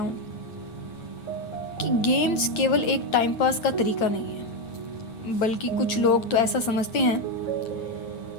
कि गेम्स केवल एक टाइम पास का तरीका नहीं है, बल्कि कुछ लोग तो ऐसा समझते हैं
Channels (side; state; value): right; late; 9.5 ms